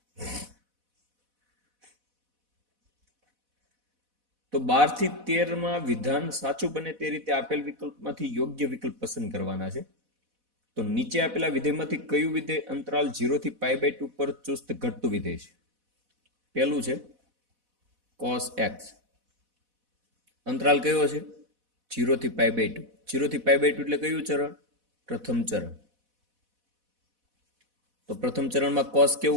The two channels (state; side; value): late; left; 4.1 ms